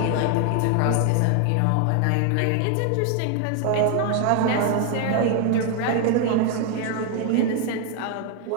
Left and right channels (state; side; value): different; both; correlation 0.00